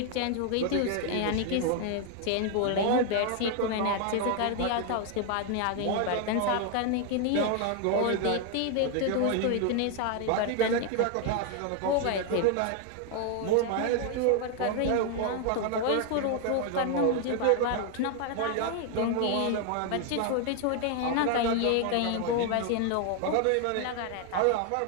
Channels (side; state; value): both; different; correlation 0.00